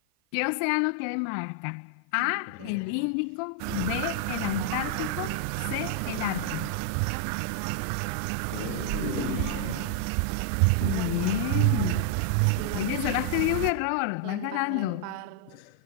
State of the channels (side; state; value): both; different; correlation 0.00